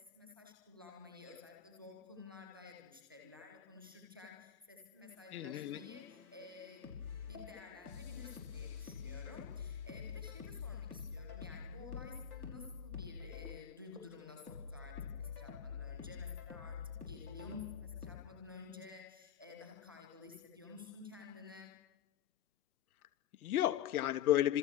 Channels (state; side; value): quieter; right; 10.1 dB